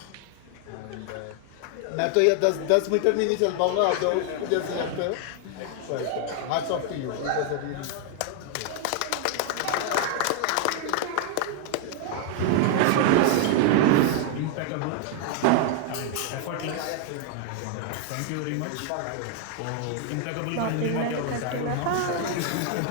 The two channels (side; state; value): both; different; correlation 0.00